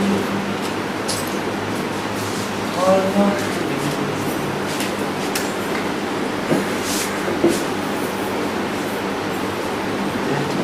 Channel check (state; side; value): identical; both; correlation 1.00